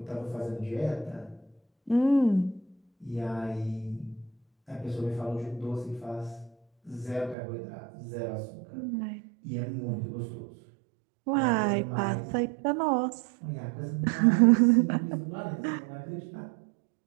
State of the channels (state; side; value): drops out; left; at 7.4 s